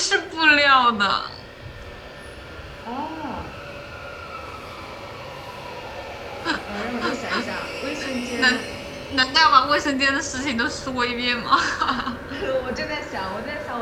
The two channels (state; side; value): identical; both; correlation 1.00